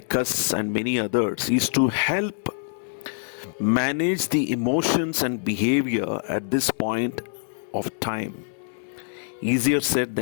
us and many others is to help manage the emotions and behavior at this point of time. Easier said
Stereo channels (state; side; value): silent; right; digital silence